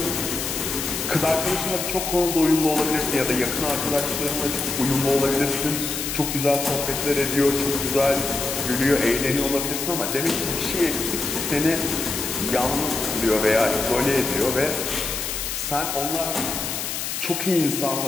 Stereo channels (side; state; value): left; noise; hiss, 3 dB below the sound